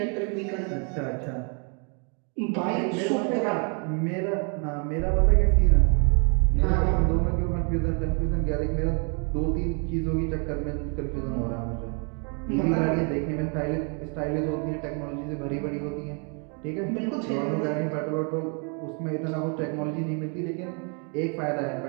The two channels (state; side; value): quieter; left; 37.8 dB